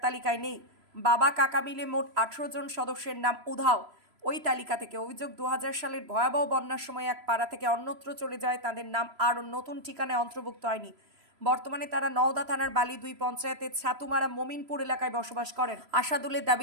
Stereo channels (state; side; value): late; left; 3.0 ms